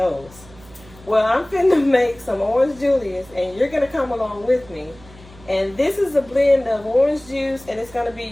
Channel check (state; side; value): noise; right; hum, 22 dB below the sound